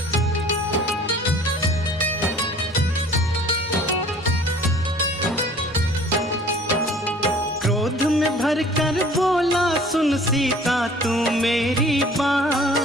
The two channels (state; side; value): normal; both; correlation 0.50